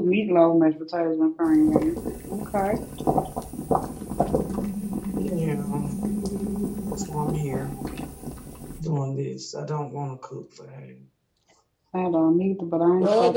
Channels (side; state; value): both; identical; correlation 1.00